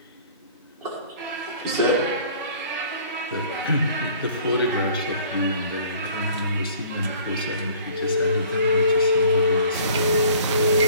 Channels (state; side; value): inverted; both; correlation -0.52